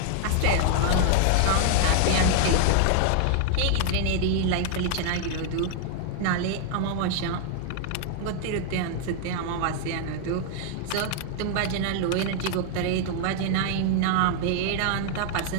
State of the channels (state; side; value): different; both; correlation 0.00